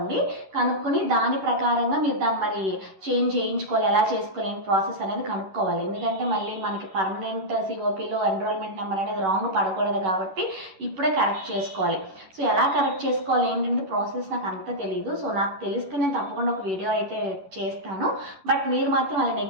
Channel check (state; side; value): late; left; 11 ms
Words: దాని ప్రకారంగా మీరు దాన్ని మరి చేంజ్ చేయించుకోవాలి, ఎలా చేసుకోవాలి ప్రాసెస్ అనేది కనుక్కోవాలి. ఎందుకంటే మళ్ళీ మనకి పర్మనెంట్ సిఓపిలో ఎన్రోల్మెంట్ నెంబర్ అనేది రాంగ్ పడకూడదు కాబట్టి ఇప్పుడే కరెక్ట్ చేసుకోవాలి. సో ఎలా కరెక్ట్ చేసుకోవాలి ఏంటంటే ప్రాసెస్ నాకు అంత తెలియదు. సో నాకు తెలిస్తే నేను తప్పకుండా ఒక వీడియో అయితే చేస్తాను. బట్ మీరు మాత్రం అలా